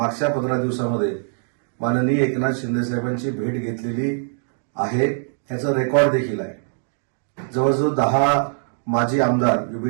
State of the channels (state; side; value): silent; left; digital silence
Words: 15 दिवसामध्ये माननीय एकनाथ शिंदे साहेबांची भेट घेतलेली आहे. ह्याचा रेकॉर्ड देखील आहे. जवळजवळ 10 माजी आमदार